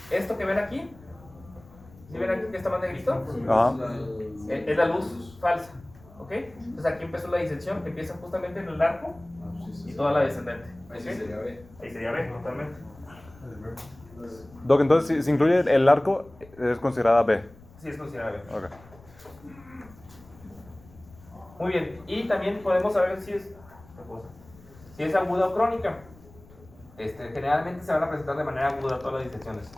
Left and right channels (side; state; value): left; noise; rumble, 23 dB below the sound